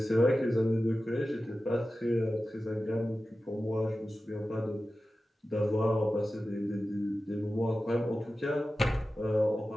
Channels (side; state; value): both; normal; correlation 0.94